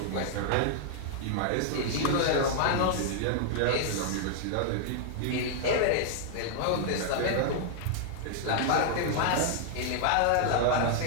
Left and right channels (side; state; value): both; different; correlation 0.00